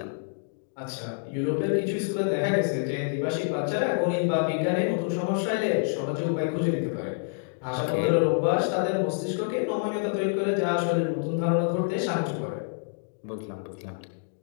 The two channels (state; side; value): silent; right; digital silence